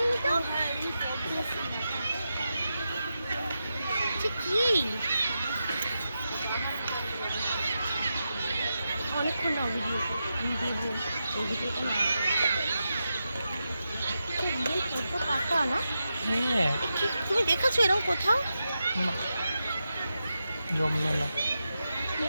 তো। কি অনেকক্ষণ না ভিডিও আমি দেবো এই ভিডিওটা না ফটো কাটা না। হ্যাঁ তুমি দেখেছো এরকম কোথাও? না জমবে না।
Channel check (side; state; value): both; inverted; correlation -0.89